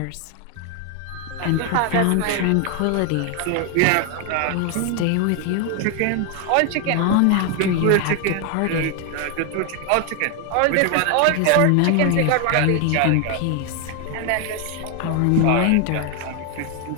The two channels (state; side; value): different; both; correlation 0.01